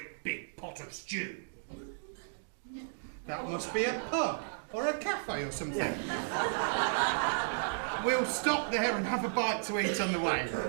big pot of stew. That must be a pub or a cafe or something. We'll stop there and have a bite to eat on the way.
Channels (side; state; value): left; silent; digital silence